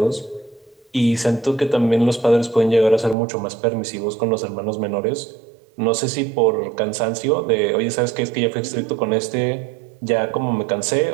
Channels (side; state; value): left; drops out; at 3.2 s